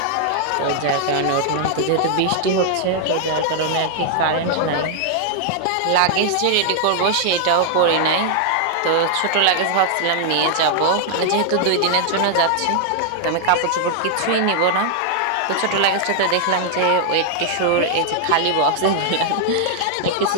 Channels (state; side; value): different; both; correlation 0.00